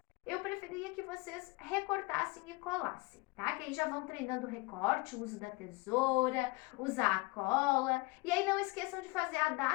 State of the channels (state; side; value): quieter; right; 24.1 dB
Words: eu preferia que vocês recortassem e colassem, tá? Que aí já vão treinando o recorte, o uso da tesoura, usar a cola. E aí não esqueçam de fazer a